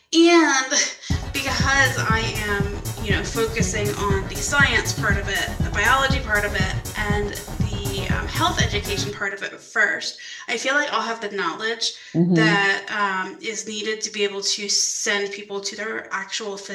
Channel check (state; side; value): identical; both; correlation 1.00